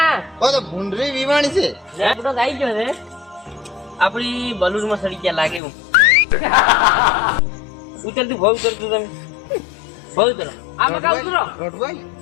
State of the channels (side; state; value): right; drops out; at 5.6 s